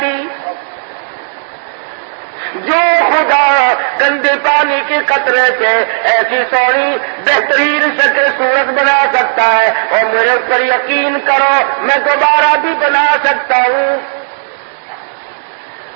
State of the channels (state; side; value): silent; left; digital silence